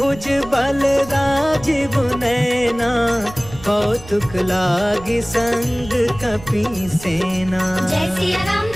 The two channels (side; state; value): right; noise; rumble, 17 dB below the sound